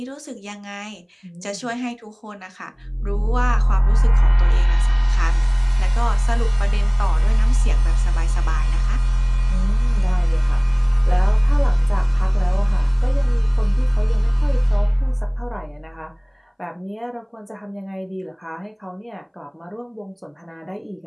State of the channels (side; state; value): both; identical; correlation 1.00